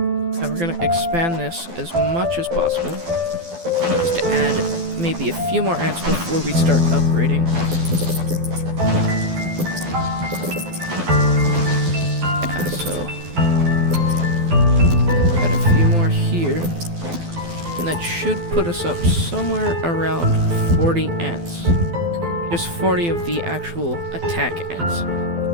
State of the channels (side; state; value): left; late; 12 ms